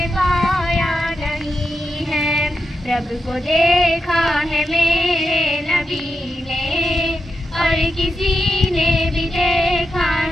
پایا نہیں ہے. رب کو دیکھا ہے میرے نبی نے اور کسی نے بھی دیکھا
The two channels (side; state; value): both; normal; correlation 0.87